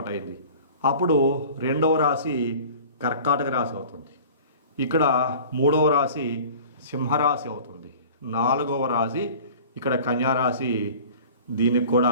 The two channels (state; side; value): inverted; both; correlation -0.43